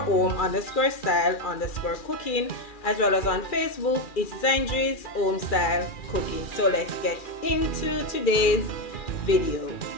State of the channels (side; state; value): right; late; 2.4 ms